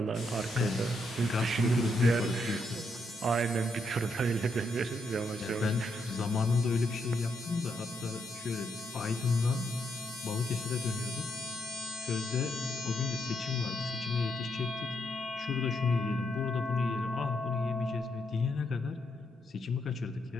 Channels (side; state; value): both; normal; correlation 0.79